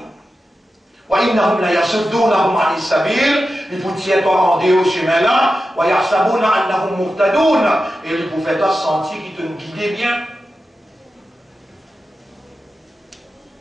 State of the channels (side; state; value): both; normal; correlation 0.91